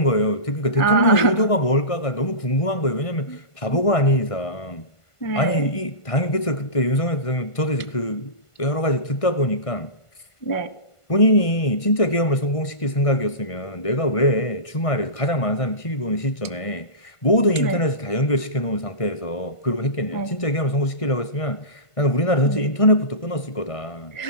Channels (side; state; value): right; late; 1.5 ms